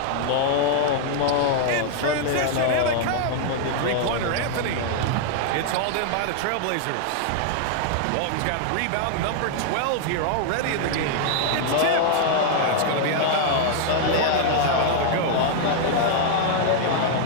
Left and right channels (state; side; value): different; both; correlation -0.01